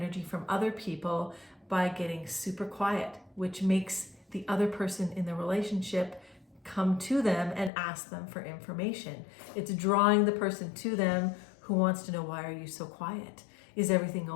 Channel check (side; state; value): right; drops out; at 7.7 s